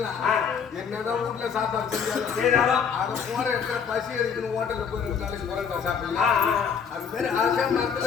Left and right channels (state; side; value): quieter; right; 6.8 dB